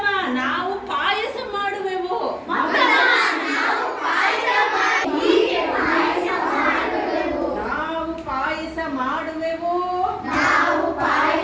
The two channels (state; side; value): identical; both; correlation 1.00